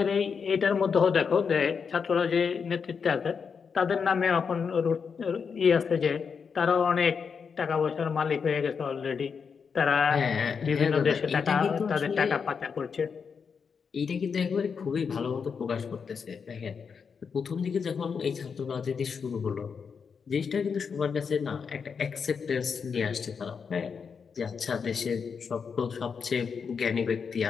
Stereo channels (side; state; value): right; quieter; 6.1 dB